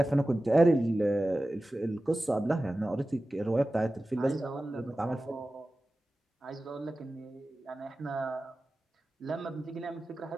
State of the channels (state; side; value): normal; both; correlation 0.95